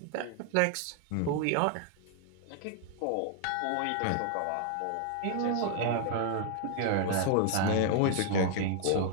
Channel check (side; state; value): both; different; correlation 0.00